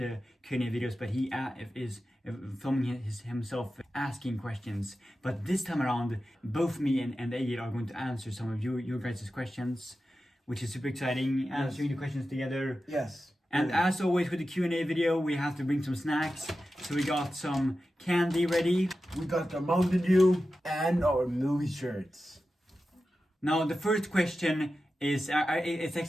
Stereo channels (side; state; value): both; normal; correlation 0.92